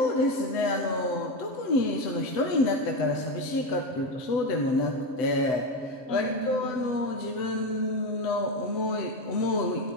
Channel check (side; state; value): right; late; 7.9 ms